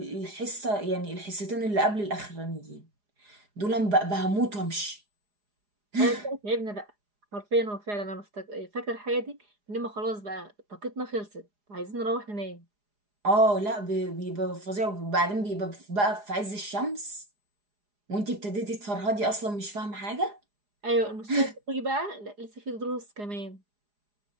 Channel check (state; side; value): late; left; 4.9 ms